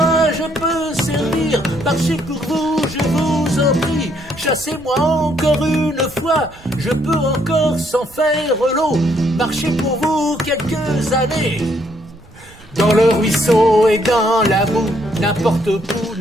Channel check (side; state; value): right; noise; rumble, 23 dB below the sound